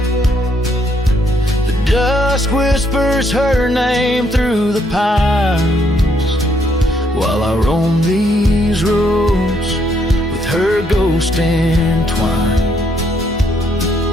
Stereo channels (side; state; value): both; normal; correlation 0.72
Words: The dusk whispers her name through the pines while I roam these roads with her ghost entwined.